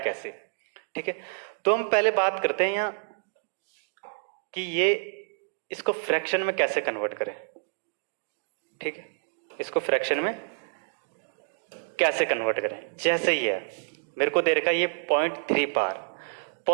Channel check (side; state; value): left; silent; digital silence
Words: कैसे, ठीक है। तो हम पहले बात करते हैं यहाँ कि ये इसको फ्रैक्शन में कैसे कन्वर्ट करें, ठीक है। इसको फ्रैक्शन में कैसे कन्वर्ट करें? जैसे ही है मेरे को दे रखा ये 0.3 बार,